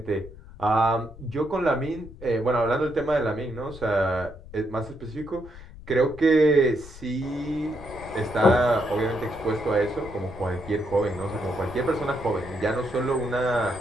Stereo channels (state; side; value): noise; left; rumble, 17 dB below the sound